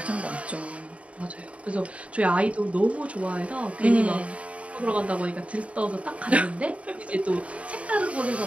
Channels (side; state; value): left; late; 0.064 ms